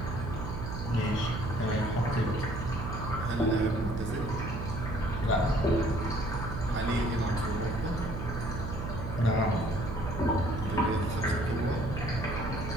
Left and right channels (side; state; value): right; noise; hum, 5 dB below the sound